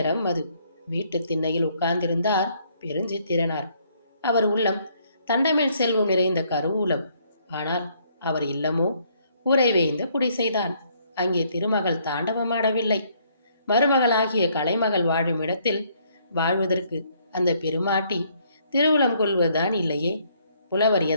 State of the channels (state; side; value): inverted; both; correlation -0.67